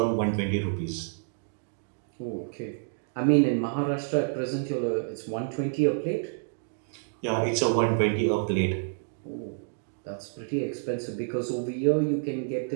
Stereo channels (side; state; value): left; silent; digital silence